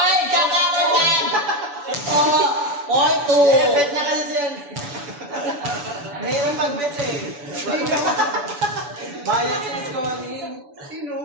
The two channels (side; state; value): left; late; 7.0 ms